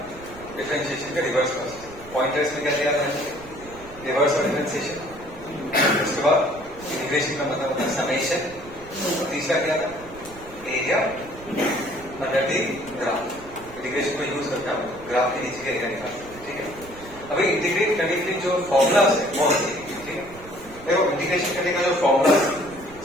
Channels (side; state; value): right; noise; rumble, 19 dB below the sound